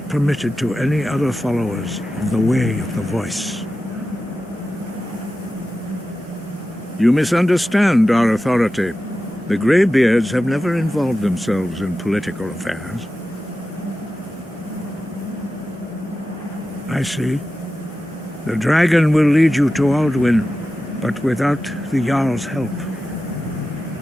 permitted to any other followers of the Way of the Voice. You misunderstand our authority. The Greybeards have never involved themselves in political affairs. I see. The dragon will lead you to Alduin, but without the Jarl's help.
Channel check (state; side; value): normal; both; correlation 0.93